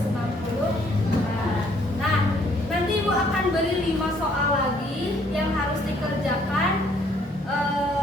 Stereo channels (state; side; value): normal; both; correlation 0.64